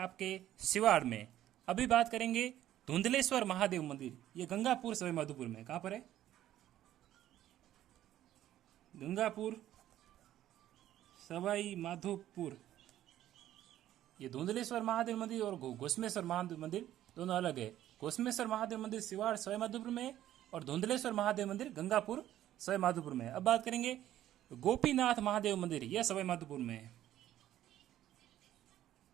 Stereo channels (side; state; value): left; quieter; 12.7 dB